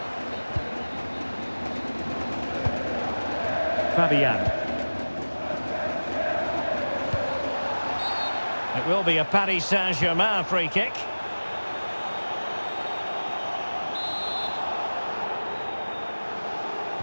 Fabian. It will be a Paris Saint-Germain free kick.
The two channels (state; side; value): inverted; both; correlation -1.00